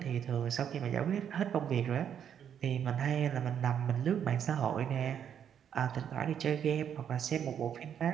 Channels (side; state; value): left; quieter; 8.7 dB